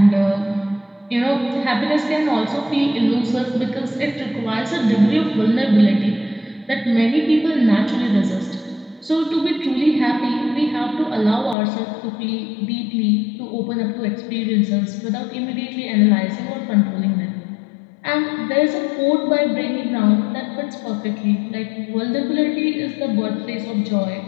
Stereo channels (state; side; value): drops out; right; at 11.6 s